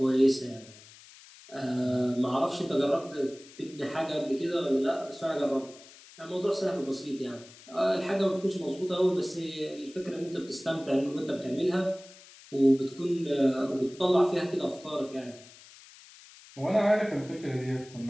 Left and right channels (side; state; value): left; noise; hiss, 21 dB below the sound